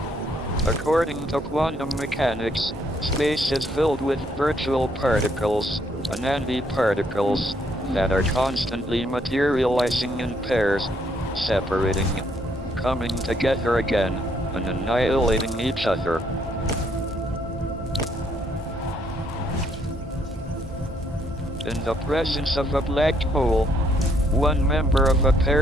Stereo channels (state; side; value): normal; both; correlation 0.70